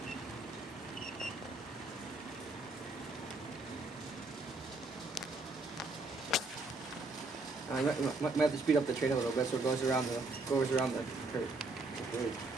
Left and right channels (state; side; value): quieter; left; 3.3 dB